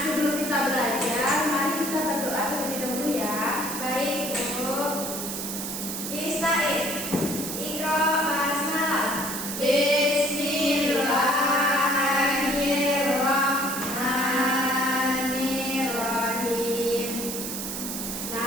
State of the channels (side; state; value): right; noise; hiss, 5 dB below the sound